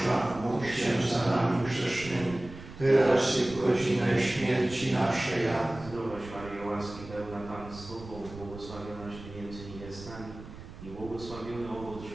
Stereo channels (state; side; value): noise; right; rumble, 15 dB below the sound